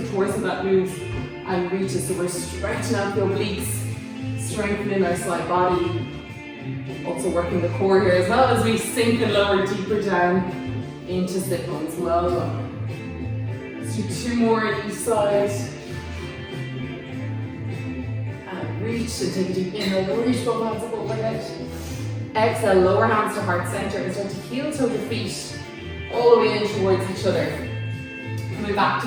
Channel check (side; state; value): both; identical; correlation 1.00